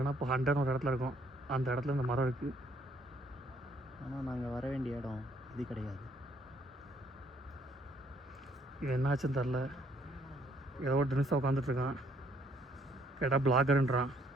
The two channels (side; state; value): both; normal; correlation 0.66